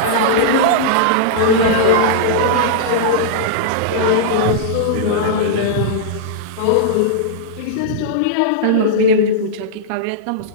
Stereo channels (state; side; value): different; both; correlation -0.02